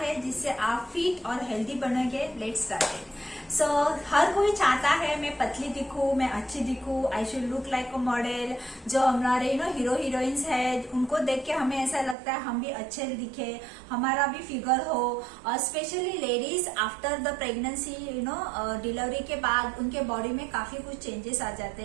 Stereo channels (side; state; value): left; drops out; at 12.2 s